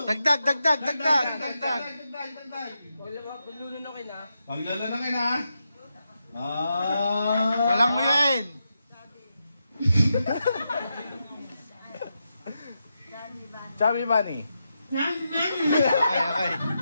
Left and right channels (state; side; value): inverted; both; correlation -0.86